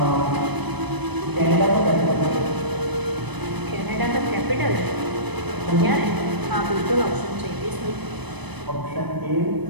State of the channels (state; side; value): late; left; 0.99 ms